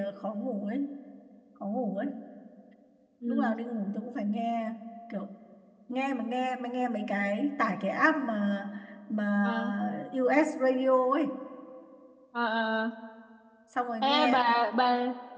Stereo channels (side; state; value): both; identical; correlation 1.00